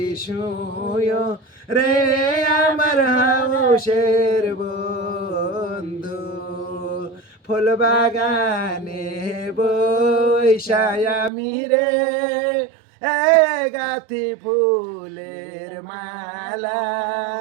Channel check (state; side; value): drops out; left; at 11.3 s